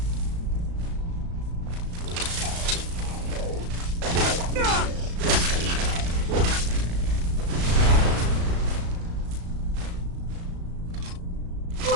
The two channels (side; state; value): left; late; 35 ms